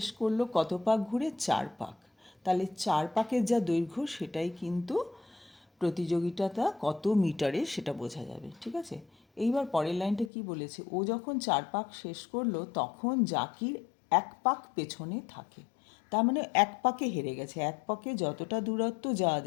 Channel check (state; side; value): drops out; right; at 10.3 s